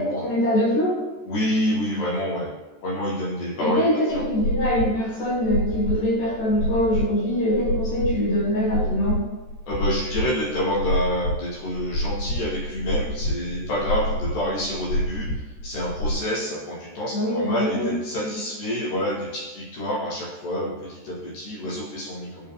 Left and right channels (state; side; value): late; right; 13 ms